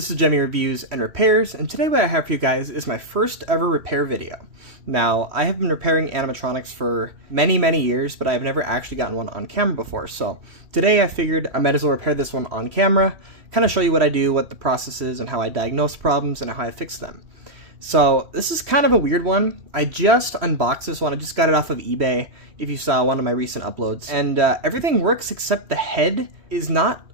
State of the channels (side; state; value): left; late; 3.1 ms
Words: is Gemmy Reviews and Repairs, and today what I have for you guys is my first ever repair video. Now, I have been repairing animatronics for many years, but I've never actually gotten one on camera before, so today I figured I might as well repair this one on camera, kind of show you what I do, what the process is, and how I diagnose problems, and how I fix them. So, this is kind of a weird one. I just unboxed this one, I just got it off of eBay, if you saw one of my recent uploads. And everything works except the head is not